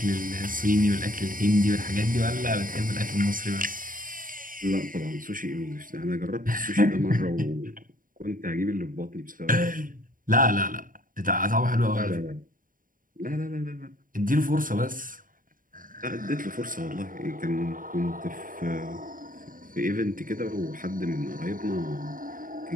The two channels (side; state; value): left; late; 0.40 ms